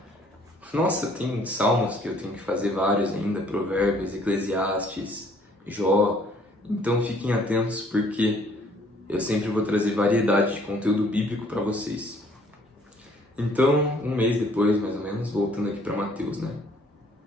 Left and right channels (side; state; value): both; normal; correlation 0.60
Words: Nossa, tem Salmos que eu tenho que fazer vários ainda, Provérbios, Eclesiastes, Jó, então fiquem atentos porque eu sempre vou trazer variedade de conteúdo bíblico para vocês. Então, um mês depois, mais ou menos, voltando aqui para Mateus, né?